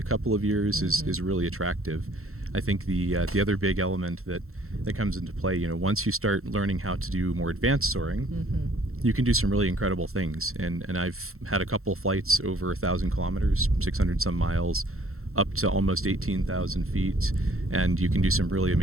couple of years is really attractive. I think the other big element that comes into play, you know, once you start learning how to do more advanced soaring, you can do some really incredible things. And I've had a couple flights over 1,000 kilometers, 600 some miles, up to almost 18,000 feet, and you can do some really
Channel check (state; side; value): late; left; 0.63 ms